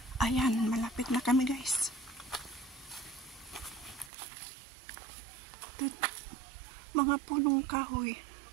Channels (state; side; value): drops out; left; at 4.1 s